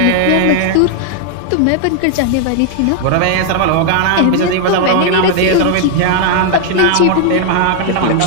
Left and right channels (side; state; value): both; different; correlation 0.00